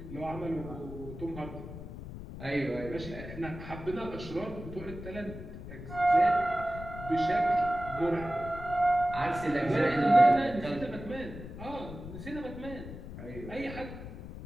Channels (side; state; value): left; noise; rumble, 11 dB below the sound